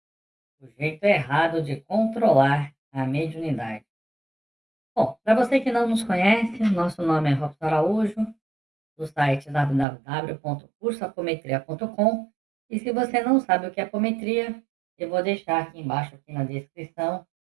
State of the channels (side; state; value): left; drops out; at 9.9 s